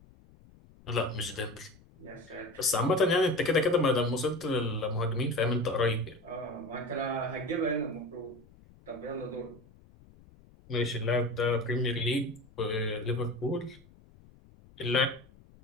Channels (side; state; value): left; noise; rumble, 25 dB below the sound